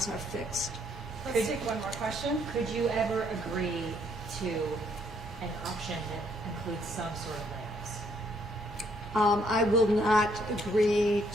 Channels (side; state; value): both; normal; correlation 0.69